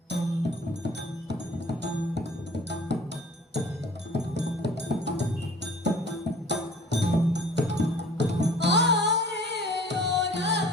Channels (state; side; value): normal; both; correlation 0.49